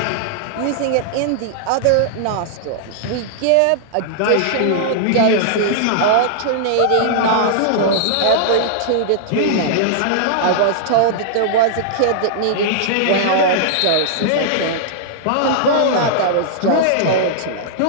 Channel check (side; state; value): both; different; correlation -0.01